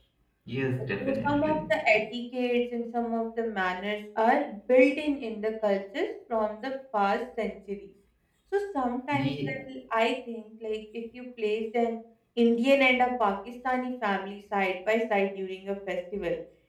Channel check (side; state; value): both; identical; correlation 1.00